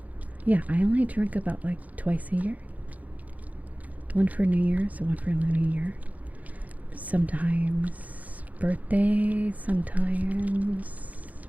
Yeah, I only drink about like twice a year. One for New Year's, one for Lunar New Year. Sometimes birthday, sometimes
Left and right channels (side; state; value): left; late; 0.076 ms